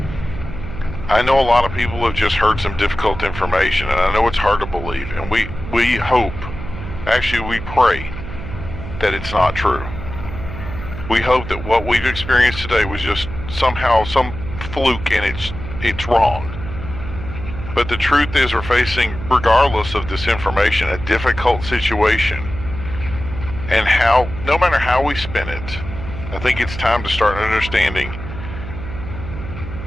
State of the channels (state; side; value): noise; right; hum, 9 dB below the sound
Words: I know a lot of people have just heard some difficult information, and I know it's hard to believe. And we hope, actually we pray, that it's not true. We hope that what we've experienced today was just somehow some fluke and it's wrong. But the truth is we're facing, regardless of this information, a difficult situation. And no matter how we spin it, I think it's time to start understanding.